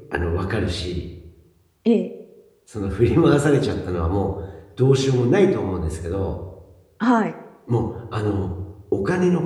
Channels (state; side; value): identical; both; correlation 1.00